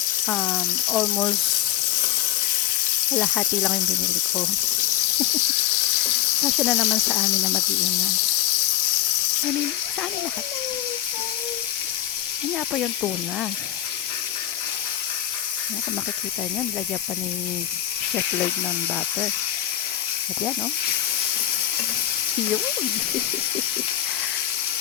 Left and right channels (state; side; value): quieter; right; 12.7 dB